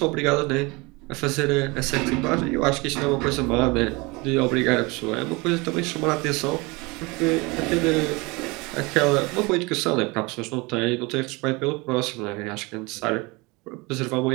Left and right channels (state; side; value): quieter; left; 25.5 dB